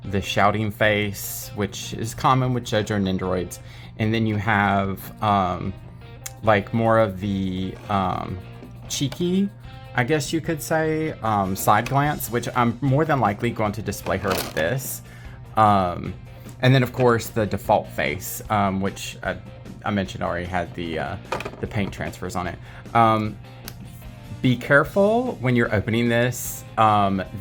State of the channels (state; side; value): identical; both; correlation 1.00